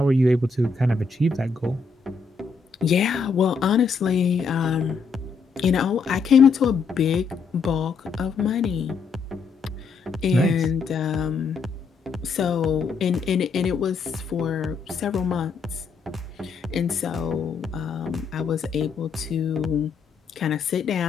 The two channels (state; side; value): quieter; right; 4.9 dB